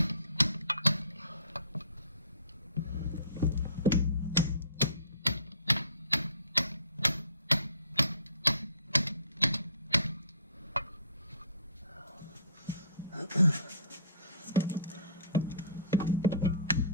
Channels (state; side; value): inverted; both; correlation -0.50